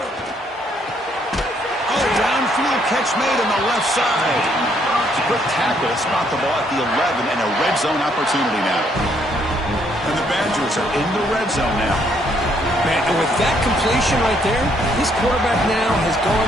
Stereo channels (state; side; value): normal; both; correlation 0.70